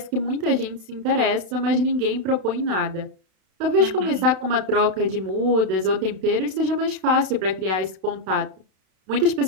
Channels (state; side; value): late; left; 32 ms